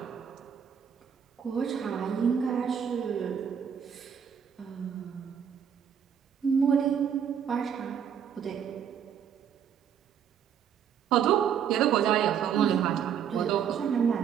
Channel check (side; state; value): left; quieter; 8.2 dB